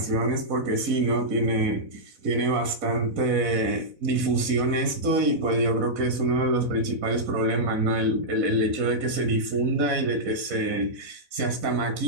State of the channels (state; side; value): late; left; 4.0 ms